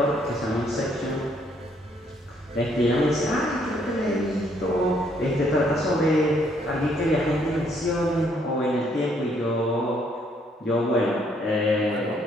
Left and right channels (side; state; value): both; normal; correlation 0.68